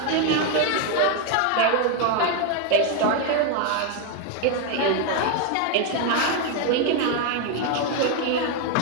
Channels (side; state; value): both; different; correlation 0.01